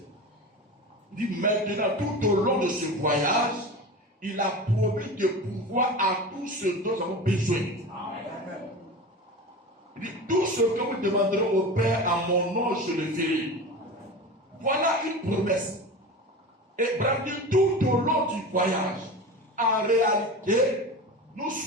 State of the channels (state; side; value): normal; both; correlation 0.30